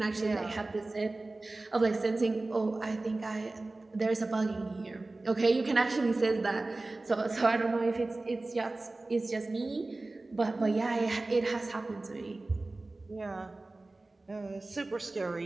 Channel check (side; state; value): left; quieter; 3.1 dB